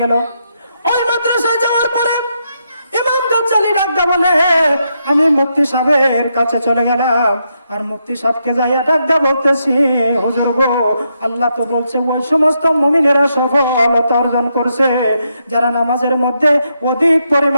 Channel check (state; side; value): inverted; both; correlation -0.81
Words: গেল। ওই মাদ্রাসায় যাওয়ার পরে ইমাম গাজ্জালী ডাকতে বলে, আমি মুফতি সাহেবের কাছে চলে গেলাম আর মুফতি সাহেবকে যাইয়া ডাকতে বলতেছি, হুজুর গো, আল্লাহ তো বলছে ওই সমস্ত মুমিনেরা সফলতা অর্জন করছে যারা নামাজের মধ্যে অধিক